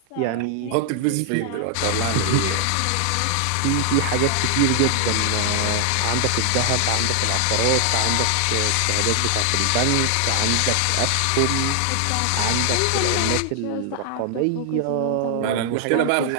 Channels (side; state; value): both; different; correlation 0.00